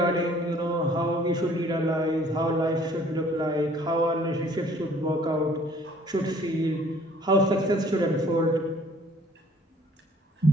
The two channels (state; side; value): normal; both; correlation 0.56